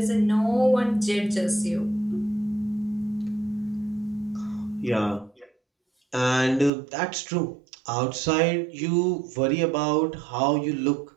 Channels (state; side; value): drops out; left; at 6.7 s